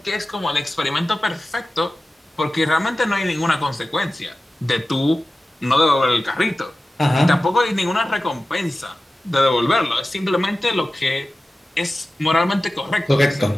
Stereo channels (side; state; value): both; normal; correlation 0.95